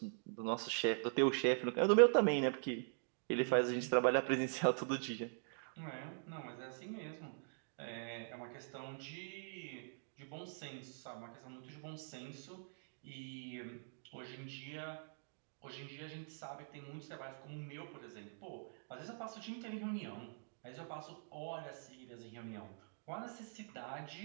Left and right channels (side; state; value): left; silent; digital silence